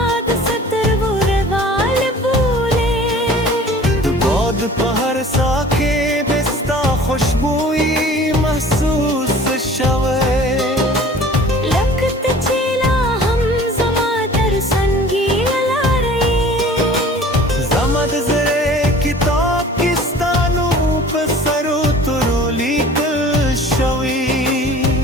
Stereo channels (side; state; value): both; normal; correlation 0.46